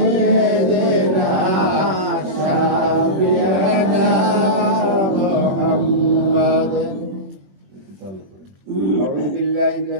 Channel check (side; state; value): left; late; 21 ms